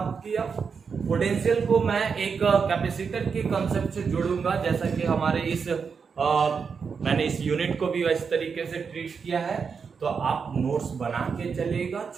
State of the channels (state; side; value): quieter; left; 5.8 dB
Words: किया। पोटेंशियल को मैं एक कैपेसिटर के कंसेप्ट से जोड़ूंगा, जैसा कि हमारे मैंने इस यूनिट को भी इस तरीके से ट्रीट किया है। तो आप नोट्स बना के चलिएगा,